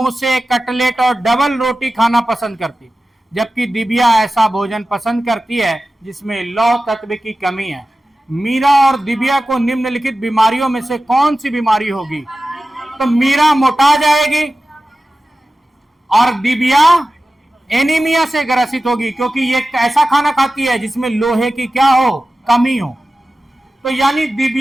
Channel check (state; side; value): normal; both; correlation 0.95